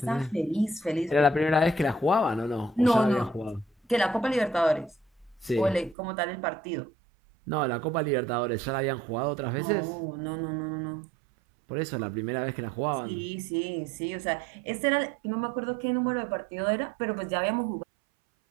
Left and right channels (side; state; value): left; drops out; at 6.0 s